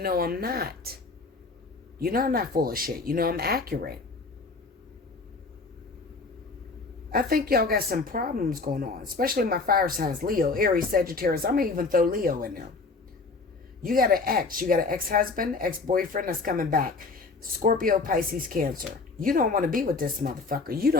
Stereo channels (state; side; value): quieter; right; 3.9 dB